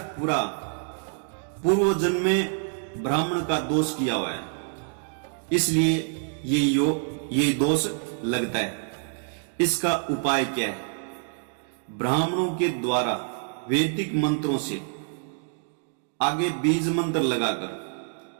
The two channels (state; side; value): silent; left; 59 dB below the other